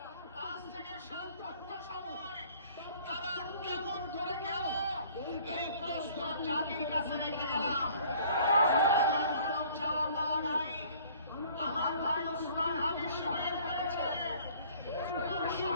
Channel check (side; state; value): both; inverted; correlation -0.54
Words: 5 থেকে 7 ঘন্টা সময় তারা কেমন করে গেল, এই প্রশ্ন জাতির কাছে রেখে গেলাম। এমন কোন চাওয়া পাওয়া নাই। আমার ভাই ওসমান হাদি শহীদ হয়েছে, ওর